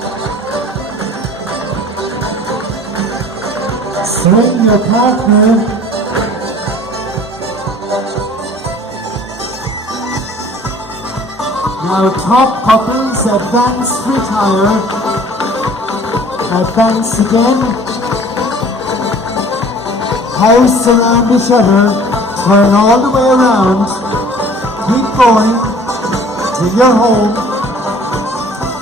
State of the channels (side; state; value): both; normal; correlation 0.49